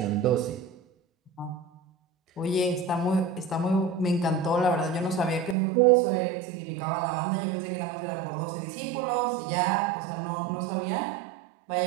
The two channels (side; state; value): left; drops out; at 5.6 s